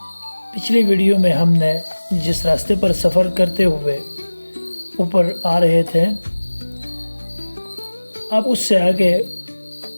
پچھلی ویڈیو میں ہم نے جس راستے پر سفر کرتے ہوئے اوپر آ رہے تھے، اب اس سے آگے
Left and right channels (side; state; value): both; inverted; correlation -1.00